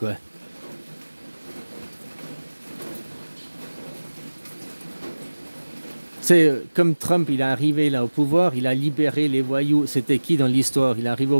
C'est comme Trump, il est arrivé là au pouvoir, il a libéré les voyous. C'était qui dans l'histoire? Il est arrivé au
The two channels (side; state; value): both; inverted; correlation -1.00